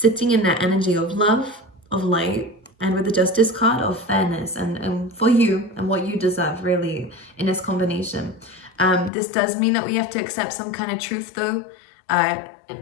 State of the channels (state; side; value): drops out; right; at 9.1 s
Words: in that energy of love, of light, and with the Justice card of fairness and for you and what you deserve, really, in this combination. This does mean that we have to accept some kind of truth though,